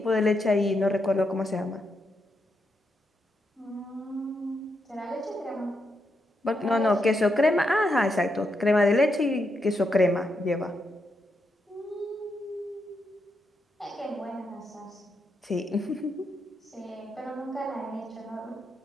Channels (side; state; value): both; normal; correlation 0.82